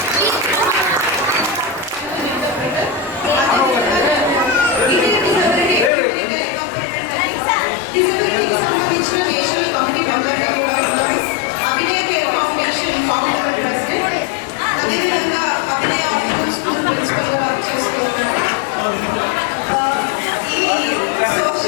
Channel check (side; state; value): right; drops out; at 5.9 s